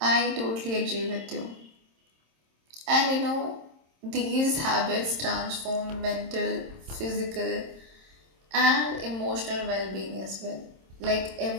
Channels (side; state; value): left; late; 26 ms